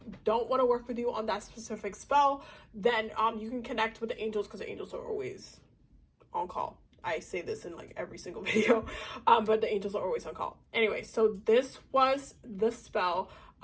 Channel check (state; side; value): identical; both; correlation 1.00